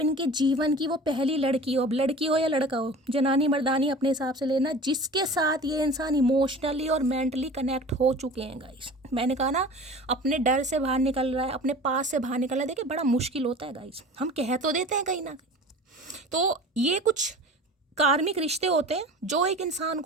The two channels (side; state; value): both; normal; correlation 0.39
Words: जीवन की वो पहली लड़की हो। अब लड़की हो या लड़का हो, जनानी मर्दानी अपने हिसाब से लेना, जिसके साथ ये इंसान इमोशनली और मेंटली कनेक्ट हो चुके हैं गाइस। मैंने कहा ना, अपने डर से बाहर निकल रहा है, अपने पास से बाहर निकल रहा है। देखिए बड़ा मुश्किल होता है गाइस, हम कह तो देते हैं कहीं ना कहीं। तो ये कुछ कार्मिक रिश्ते होते हैं जो एक इंसान